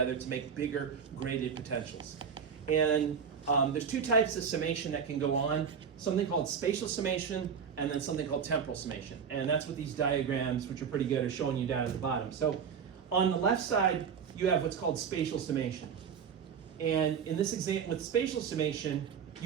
to make bigger graded potentials. And there's two types of summation that can go on, something called spatial summation and then something called temporal summation. And that's what these diagrams, which are pretty good, are showing you down at the bottom. So on the left side, you have what's called spatial summation. And in this example, with spatial summation,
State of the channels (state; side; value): quieter; left; 6.9 dB